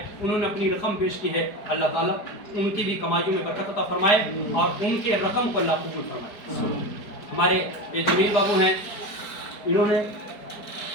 انہوں نے اپنی رقم پیش کی ہے، اللہ تعالیٰ ان کی بھی کمائیوں میں برکت عطا فرمائے اور ان کے رقم کو اللہ قبول فرمائے۔ ہمارے یہ جمیل بابو ہیں، انہوں نے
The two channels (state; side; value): late; right; 4.7 ms